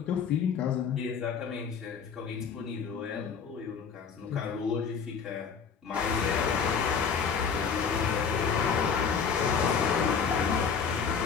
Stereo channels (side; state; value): right; quieter; 6.4 dB